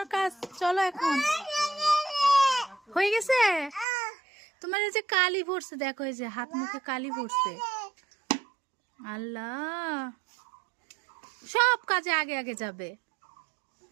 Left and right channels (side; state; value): left; drops out; at 3.9 s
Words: কাজ, চলো এখন। হয়ে গেছে? তোমার এই যে কালি পড়ছে, দেখো এই যে হাত মুখে কালি পড়ছে। আল্লাহ, সব কাজে আগে আগে যাবে